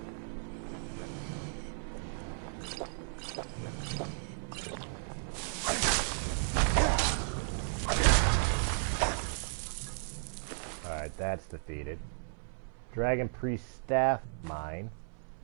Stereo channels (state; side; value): silent; left; 55 dB below the other